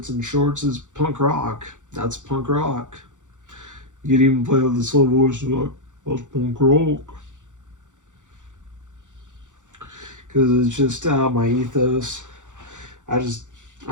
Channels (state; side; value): late; left; 0.86 ms